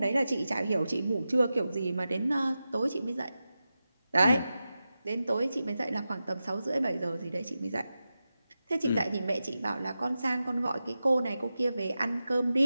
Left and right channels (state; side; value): inverted; both; correlation -0.93